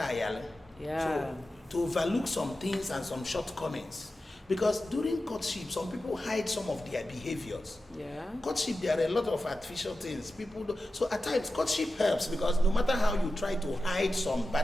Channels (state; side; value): normal; both; correlation 0.93